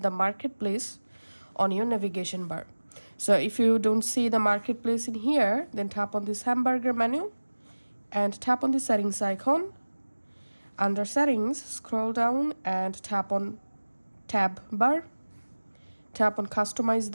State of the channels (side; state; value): both; inverted; correlation -1.00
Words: marketplace on your navigation bar. So if you don't see the marketplace in here, then tap on this hamburger menu and tap on the settings icon. Under settings, scroll down and tap on tab bar. Tap on customize